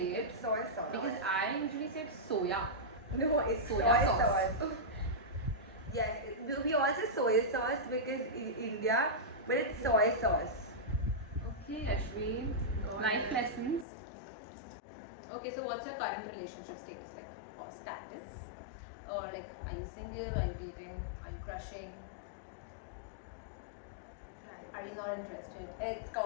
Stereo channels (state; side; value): drops out; right; at 13.9 s